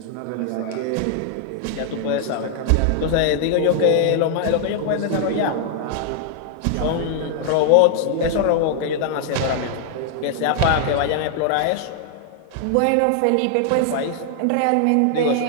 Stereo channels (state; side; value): different; both; correlation 0.00